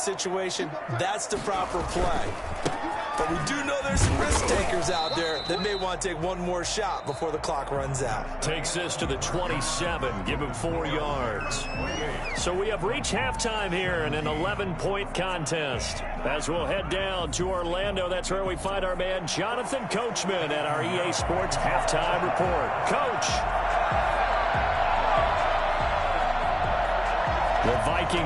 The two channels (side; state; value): both; identical; correlation 1.00